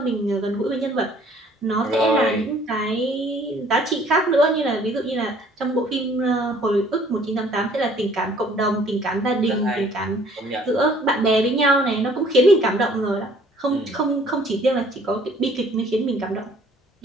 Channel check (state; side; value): normal; both; correlation 0.57